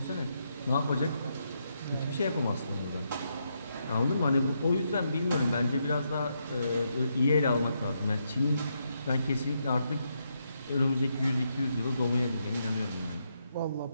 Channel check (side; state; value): both; inverted; correlation -0.80